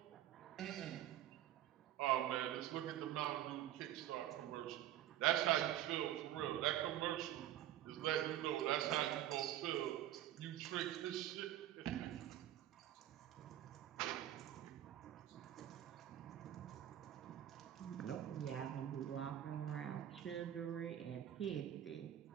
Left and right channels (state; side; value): quieter; left; 12.4 dB